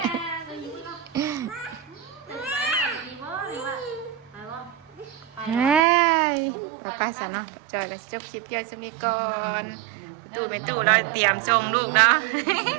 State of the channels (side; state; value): left; drops out; at 5.8 s